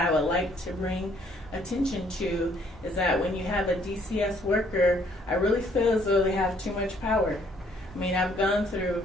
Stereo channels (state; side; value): normal; both; correlation 0.65